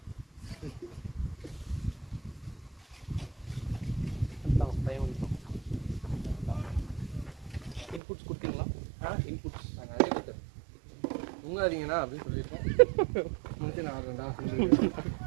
இன்புட்ஸ் கொடுத்தீங்களா? இன்புட்ஸ் நிறைய கொடுத்தேன். தூங்காதீங்கண்ணா அப்படின்னு சொல்லியிருக்கேன். முடிச்சு நான் ஆடுறேன்டா.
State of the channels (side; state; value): left; drops out; at 8.0 s